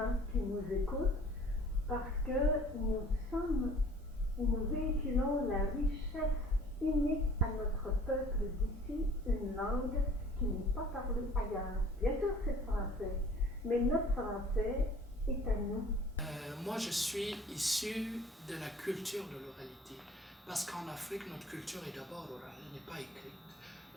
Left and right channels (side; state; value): both; normal; correlation 0.51